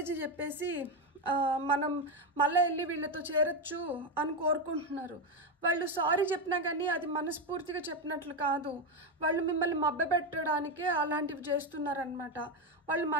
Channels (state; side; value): normal; both; correlation 0.10